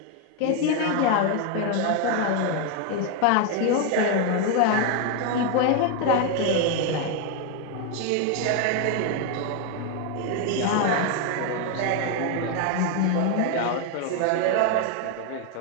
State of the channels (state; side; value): different; both; correlation 0.01